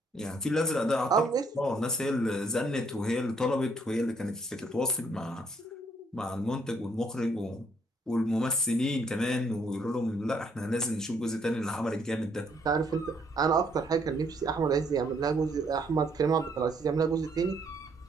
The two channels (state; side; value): normal; both; correlation 0.68